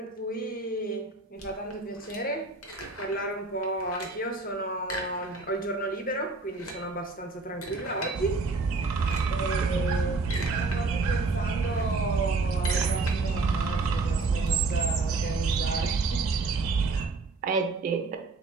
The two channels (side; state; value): left; quieter; 3.7 dB